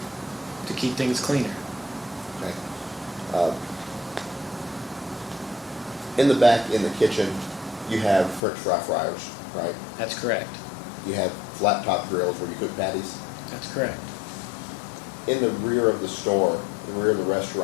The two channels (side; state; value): right; drops out; at 8.4 s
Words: to keep things cleaner. Okay. In the back, in the kitchen, you have French fry fryers, right? That's correct. You have flat top grills where you cook patties. That's correct. In the rear of the store, the rear of the